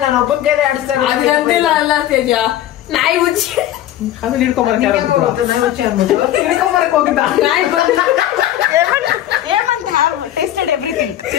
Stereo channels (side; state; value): right; quieter; 12.7 dB